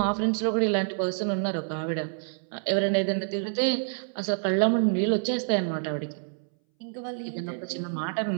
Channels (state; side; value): silent; left; 60 dB below the other